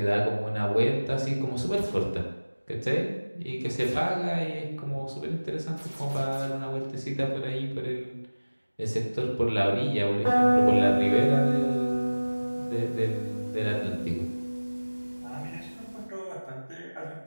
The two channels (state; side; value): inverted; both; correlation -1.00